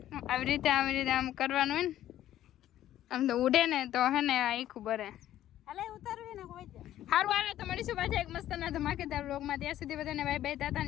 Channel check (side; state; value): right; quieter; 12.6 dB